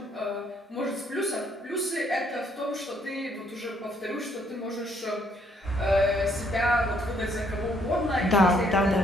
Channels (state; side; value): normal; both; correlation 0.68